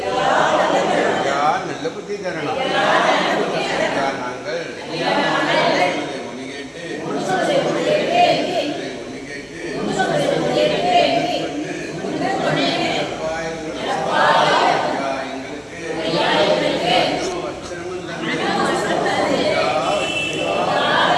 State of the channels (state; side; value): identical; both; correlation 1.00